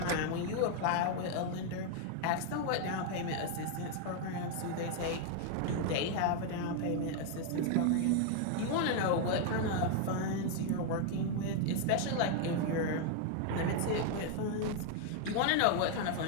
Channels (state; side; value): different; both; correlation 0.00